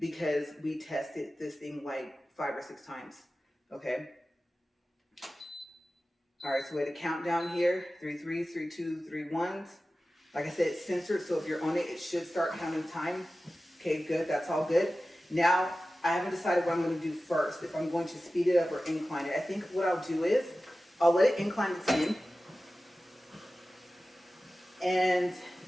we tested this thing like 5 or 6 times, okay? All right, so we had a countdown here, 3 3s, 3 2s, 3 1s. Like I said, it's censored, so if you're on it, it should start counting time. Okay, good, that's all good. Now, I haven't decided what I'm gonna do first, if I'm going to speed it up or incline it. I think what I'll do is, I'll let it incline its in, and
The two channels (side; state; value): both; normal; correlation 0.95